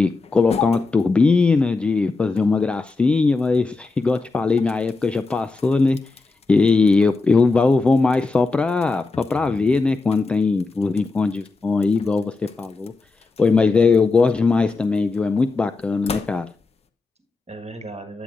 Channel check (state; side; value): quieter; right; 3.8 dB